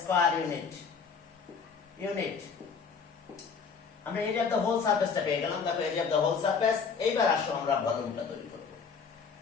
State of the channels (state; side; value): quieter; right; 5.7 dB